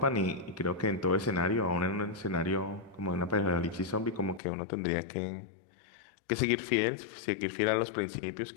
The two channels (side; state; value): right; drops out; at 4.4 s